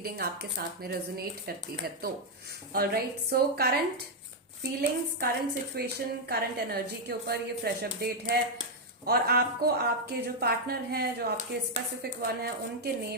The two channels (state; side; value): normal; both; correlation -0.01